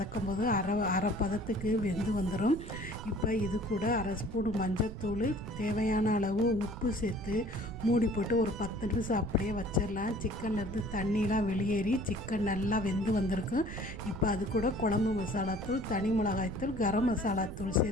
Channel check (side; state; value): right; noise; rumble, 10 dB below the sound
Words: போது அரை பதத்துக்கு வெந்து வந்துடும். இப்போ இது கூட அரை ஸ்பூன் மஞ்சத்தூள், தேவையான அளவு உப்பு சேர்த்து மூடி போட்டு ஒரு 10 நிமிஷம் அப்படியே வச்சிடலாம். சிக்கன்லேருந்து தண்ணிலாம் வெளியேறி சிக்கன் நல்லா வெந்து வந்திருக்கும். இப்போ அது கூட குழம்பு மசாலாத்தூள், தனி மிளகாய்த்தூள், கரம் மசாலாத்தூள்